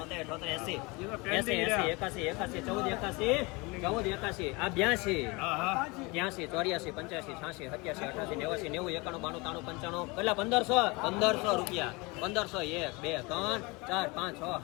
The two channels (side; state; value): right; quieter; 26.0 dB